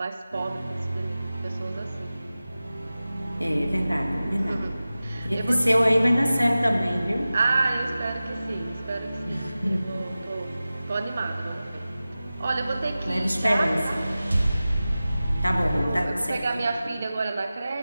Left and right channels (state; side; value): inverted; both; correlation -0.96